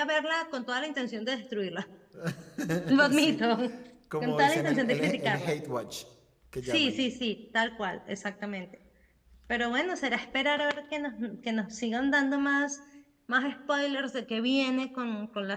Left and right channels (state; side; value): identical; both; correlation 1.00